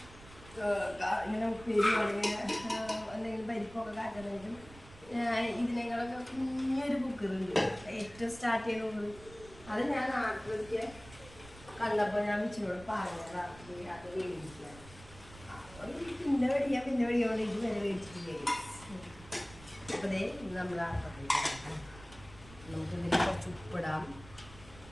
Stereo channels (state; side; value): noise; right; rumble, 19 dB below the sound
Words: ഇങ്ങനെ ഉപ്പേരി അല്ലെങ്കിൽ എന്തെങ്കിലും പരിപ്പൊക്കെ കാറ്റണമെങ്കിലും ഇതിനേക്കാളൊക്കെ കുഞ്ഞൊരു കുക്കറുണ്ട്. ഏറ്റവും സ്റ്റാർട്ട് ചെയ്യുന്നത് അത് ഞാൻ നാട്ടിലൊക്കെ കണ്ടപ്പോൾ ഞാൻ വെച്ചിനോട് പറഞ്ഞത് അത് വേടിക്കുക. അപ്പം പിന്നെ മേടിക്കാൻ ഇത് വരെ മേടിച്ചിട്ടില്ലേ. അപ്പോൾ ദേ ഇത് നമ്മൾ ആട്ടത്തിലേക്ക് നമുക്കിതിൽ കുറച്ച് ഉപ്പിടാം.